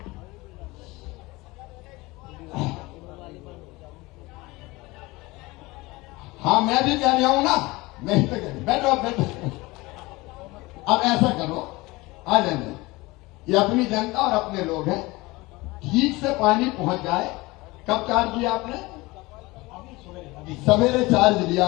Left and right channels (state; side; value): quieter; right; 22.0 dB